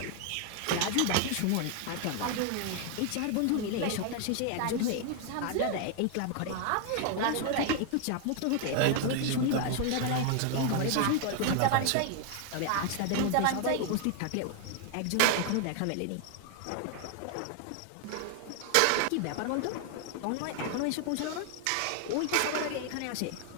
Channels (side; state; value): both; different; correlation 0.00